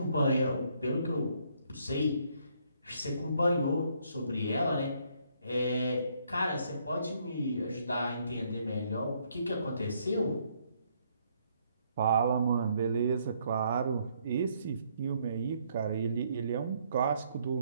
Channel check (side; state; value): both; inverted; correlation -0.70